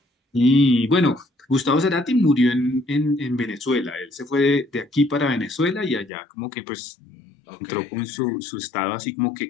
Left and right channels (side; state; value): right; drops out; at 6.1 s